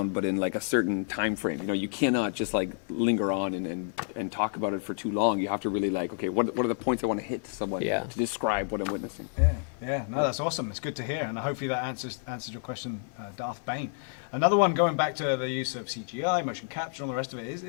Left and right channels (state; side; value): silent; right; 58 dB below the other